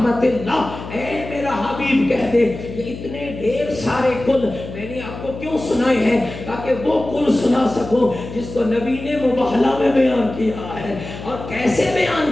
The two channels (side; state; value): left; noise; hum, 11 dB below the sound